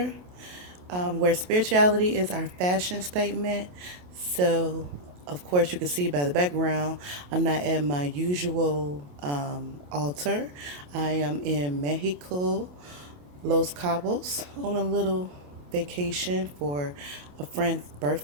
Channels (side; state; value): left; late; 28 ms